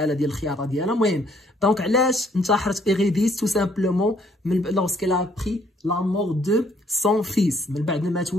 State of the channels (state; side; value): normal; both; correlation 0.66